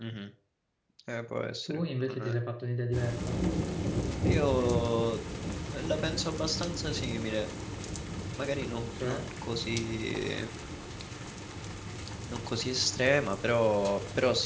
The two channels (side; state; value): both; identical; correlation 1.00